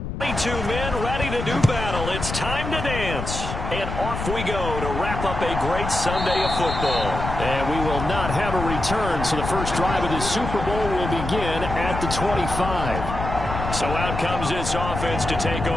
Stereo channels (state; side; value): noise; left; rumble, 5 dB below the sound